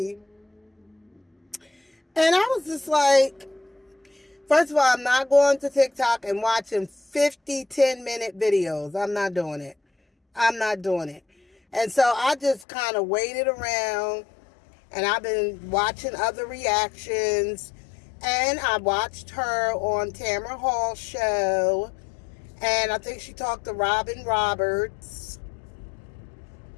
And I was just like, first of all, I'm not going to TikTok and watching 50 10-minute videos. I'm not doing it. And so I just kind of waited around, and I've been watching other reactions. And I watched her on Tamara Hall's show. And I think she talked to Robin Roberts.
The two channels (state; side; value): drops out; right; at 12.7 s